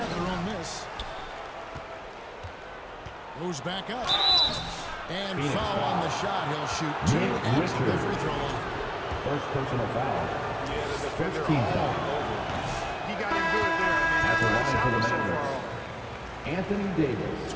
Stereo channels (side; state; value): both; identical; correlation 1.00